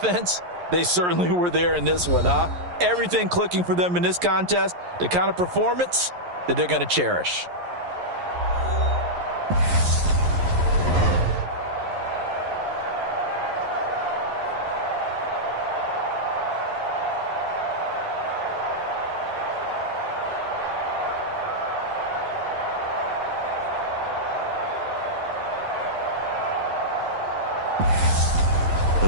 they certainly were there in this one, huh? Everything clicking for them in this contest, the kind of performance that they're going to cherish.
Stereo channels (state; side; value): late; left; 11 ms